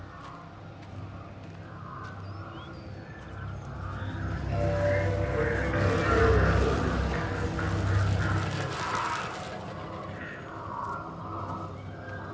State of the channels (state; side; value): identical; both; correlation 1.00